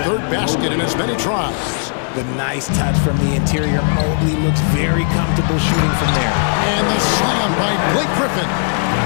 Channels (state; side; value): silent; right; digital silence